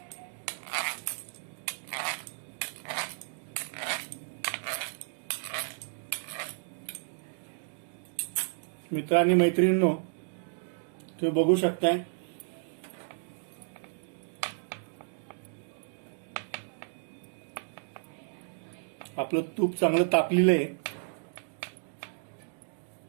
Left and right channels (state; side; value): silent; left; digital silence